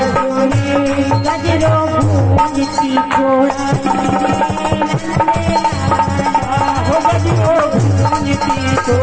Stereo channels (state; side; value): identical; both; correlation 1.00